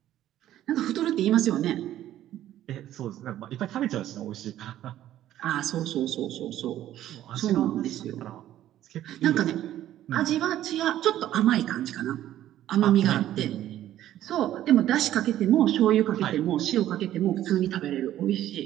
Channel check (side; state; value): left; quieter; 12.7 dB